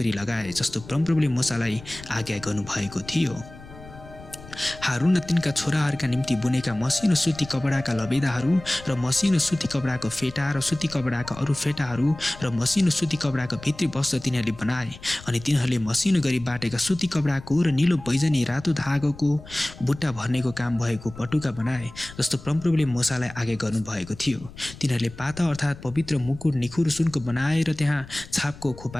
लगाए जस्तो परमप्रभुले मोसालाई आज्ञा गर्नुभएको थियो। हारून र तिनका छोराहरूका निम्ति बुनेका मसिनो सुती कपडाका लबेदाहरू र मसिनो सुती कपडाको फेटा र सुती कपडाका अरू फेटाहरू र मसिनो सुती कपडाको भित्री वस्त्र तिनीहरूले बनाए। अनि तिनीहरूले मसिनो गरी बाटेका सुती कपडाको र नीलो बैजनी रातो धागोको बुट्टा भर्नेको काम भएको पटुका बनाए जस्तो परमप्रभुले मोसालाई आज्ञा गर्नुभएको थियो। तिनीहरूले पाता अर्थात् पवित्र मुकुट निखुर सुनको बनाएर त्यहाँ छापको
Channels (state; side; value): noise; left; rumble, 17 dB below the sound